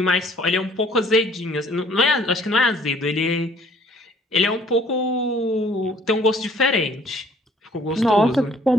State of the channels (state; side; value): normal; both; correlation 0.57